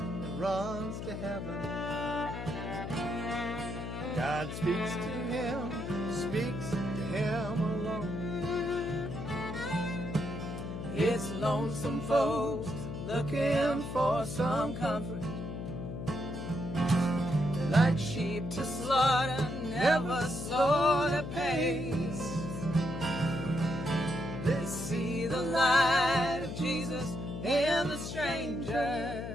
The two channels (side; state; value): left; noise; hum, 6 dB below the sound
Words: runs to heaven. God speaks to him alone. It's lonesome folks looking for some comfort. Like sheep to slaughter, never slow the pace. They see the light of Jesus in the stranger,